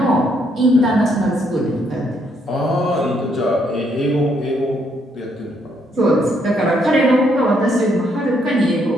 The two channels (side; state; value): both; normal; correlation 0.72